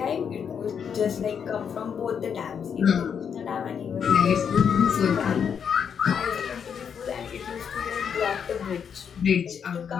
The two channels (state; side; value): quieter; right; 7.3 dB